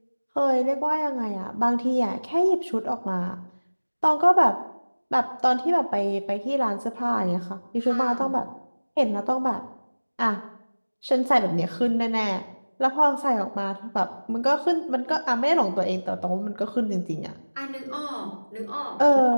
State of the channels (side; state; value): both; inverted; correlation -1.00